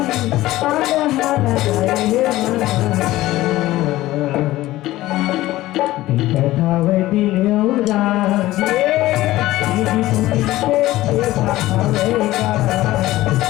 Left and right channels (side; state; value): right; quieter; 16.5 dB